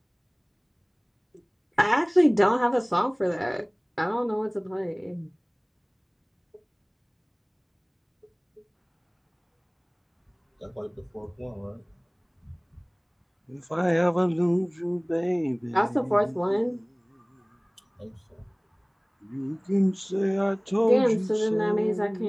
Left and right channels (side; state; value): both; identical; correlation 1.00